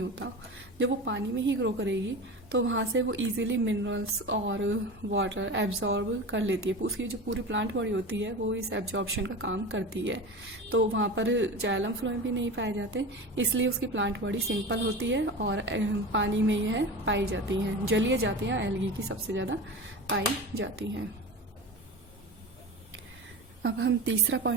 होता। जब वो पानी में ही ग्रो करेगी तो वहाँ से वो इजीली मिनरल्स और वाटर एब्जॉर्ब कर लेती है। उसकी जो पूरी प्लांट बॉडी होती है वो इस एब्जॉर्प्शन का काम करती है, तो वहाँ पर जाइलम फ्लोएम भी नहीं पाए जाते, इसलिए उसकी प्लांट बॉडी सिंपल होती है और पानी में यह पाई जाती हैं। जलीय जातियाँ एल्गी की सबसे ज़्यादा पाई जाती हैं। अब हम तीसरा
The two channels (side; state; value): both; normal; correlation 0.29